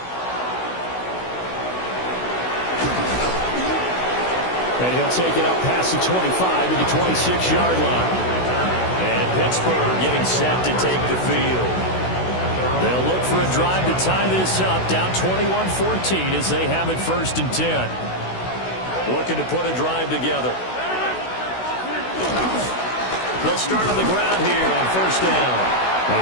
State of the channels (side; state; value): right; late; 16 ms